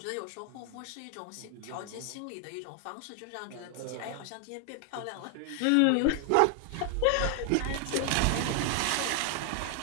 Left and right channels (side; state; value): both; different; correlation 0.00